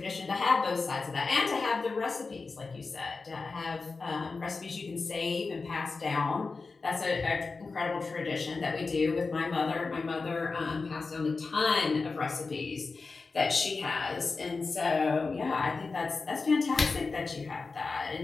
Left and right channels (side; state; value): right; quieter; 4.2 dB